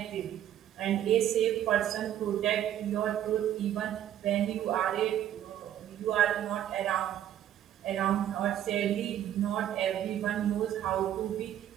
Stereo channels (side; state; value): left; quieter; 11.2 dB